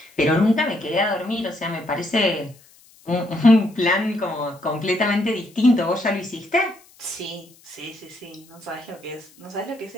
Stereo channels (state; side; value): noise; left; hiss, 27 dB below the sound